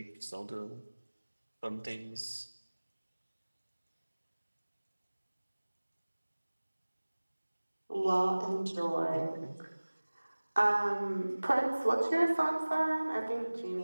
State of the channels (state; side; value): inverted; both; correlation -1.00